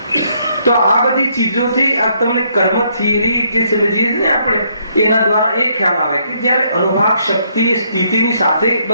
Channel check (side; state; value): both; inverted; correlation -0.71